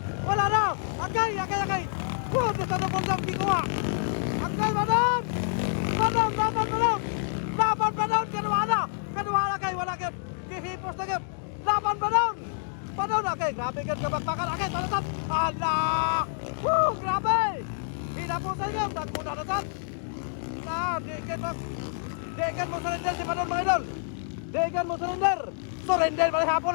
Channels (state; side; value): silent; right; digital silence